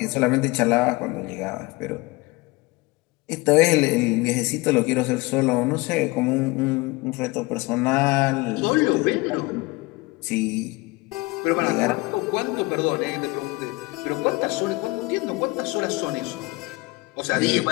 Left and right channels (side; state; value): right; quieter; 23.0 dB